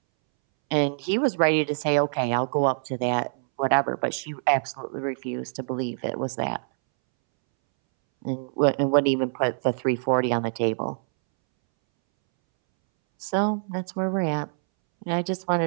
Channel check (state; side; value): silent; left; 62 dB below the other